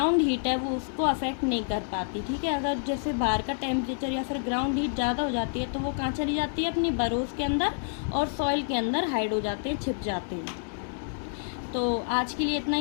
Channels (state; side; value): silent; right; digital silence